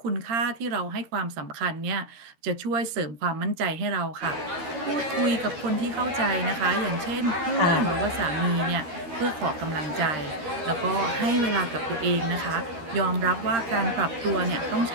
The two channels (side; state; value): left; late; 12 ms